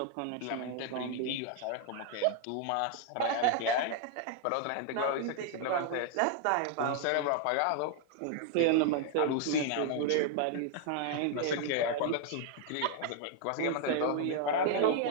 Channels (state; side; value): different; both; correlation 0.00